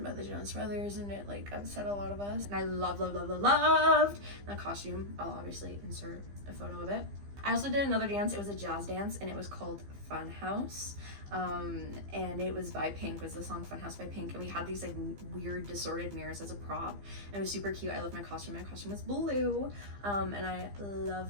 by the Jonas Brothers, and it like upset a lot of us. And I loved that costume. I'll obviously insert a photo of it. I also did another dance. It was a jazz dance, and it was called Fun House. And it was by Pink, was the song Fun House by Pink. And we had these like weird distorted mirrors as a prop. And it was super cute. I loved my costume. My costume was blue. And I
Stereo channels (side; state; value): left; late; 15 ms